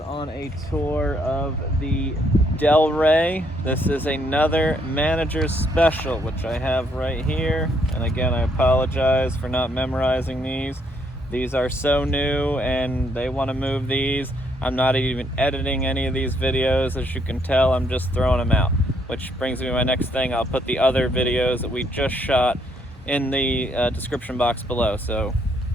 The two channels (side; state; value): both; normal; correlation 0.71